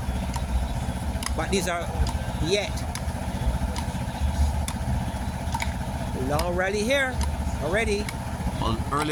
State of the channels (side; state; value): both; identical; correlation 1.00